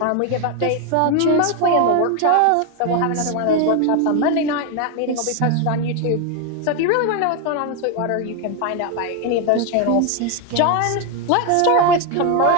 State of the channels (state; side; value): different; both; correlation 0.01